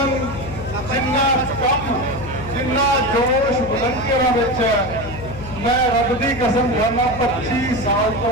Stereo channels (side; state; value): left; noise; hum, 11 dB below the sound